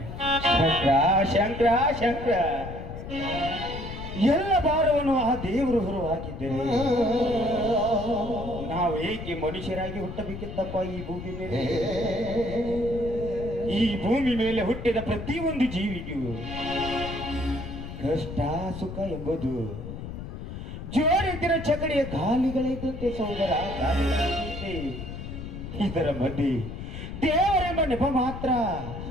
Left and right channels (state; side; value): noise; left; rumble, 9 dB below the sound